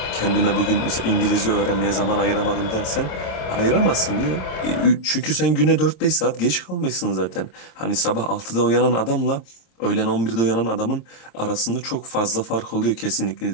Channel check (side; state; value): right; late; 26 ms